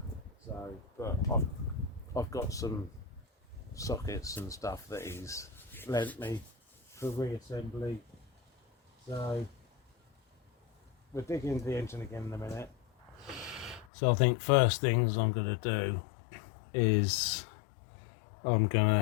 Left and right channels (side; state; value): right; drops out; at 13.9 s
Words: So, but I've got some sockets and stuff that he's lent me for reassembly. So we'll dig into the engine again in a minute. So I think first things I'm going to do is I'm going